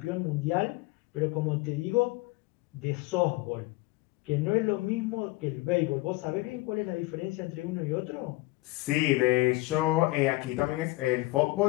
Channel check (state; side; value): quieter; right; 21.3 dB